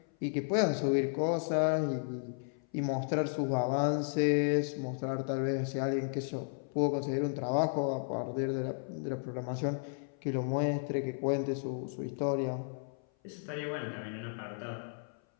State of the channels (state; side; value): silent; right; 55 dB below the other